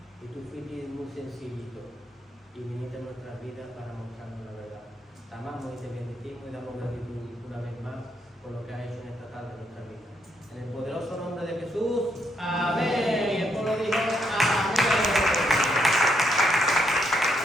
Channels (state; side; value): normal; both; correlation 0.76